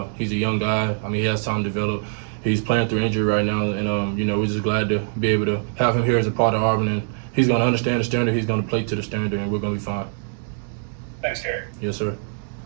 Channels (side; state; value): left; silent; digital silence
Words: He's a young guy. He has time to develop. He's playing through injury right now, and we're just glad to be able to have him here as a part of Auburn, and he's going to understand the standard. He's going to play to the standard, and we're going to be fine. Thanks, Derek. Yes, sir.